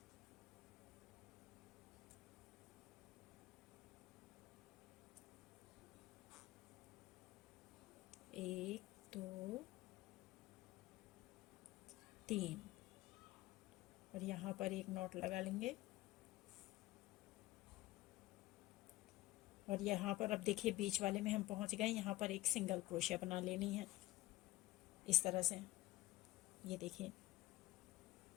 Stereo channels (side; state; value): right; quieter; 17.6 dB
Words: 1 2 3 और यहाँ पर एक नॉट लगा लेंगे। और यहाँ पर अब देखिए बीच वाले में हम पहुँच गए, यहाँ पर एक सिंगल क्रोशिया बना लेनी है इस तरह से। ये देखिए